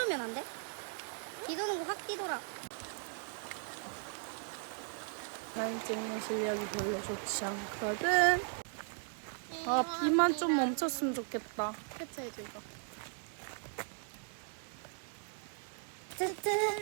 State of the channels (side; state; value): left; silent; 53 dB below the other